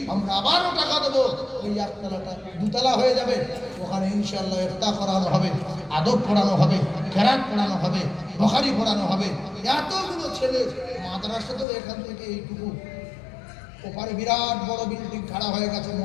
আমরা আবারও টাকা দেবো, ওই একতলাটা দুতলা হয়ে যাবে। ওখানে ইনশাআল্লাহ ইফতার করানো হবে, আদব পড়ানো হবে, কেরাত পড়ানো হবে, বুখারী পড়ানো হবে। এতগুলো ছেলে মাদ্রাসা তো এখান থেকে এইটুকু, ওপারে বিরাট বড় বিল্ডিং খাড়া হয়ে গেছে,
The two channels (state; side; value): drops out; right; at 11.7 s